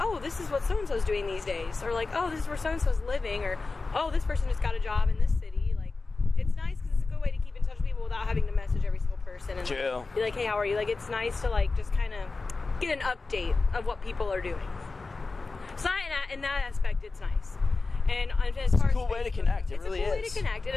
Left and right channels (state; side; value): quieter; right; 3.8 dB